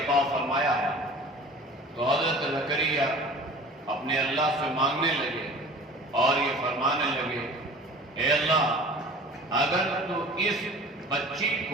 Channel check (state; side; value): normal; both; correlation 0.42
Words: فرمایا ہے۔ تو حضرت زکریا اپنے اللہ سے مانگنے لگے اور یہ فرمانے لگے، اے اللہ، اگر تو اس بچی